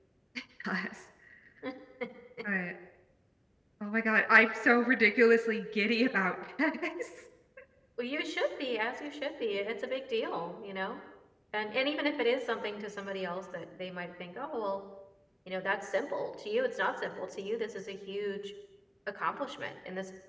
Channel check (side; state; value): both; identical; correlation 1.00